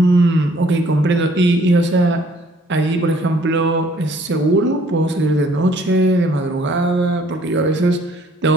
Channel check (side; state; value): both; normal; correlation 0.61